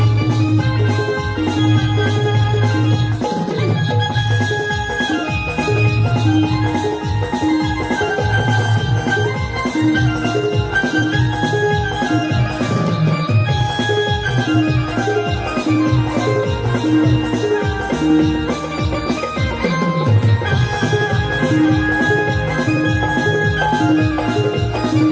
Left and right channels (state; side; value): identical; both; correlation 1.00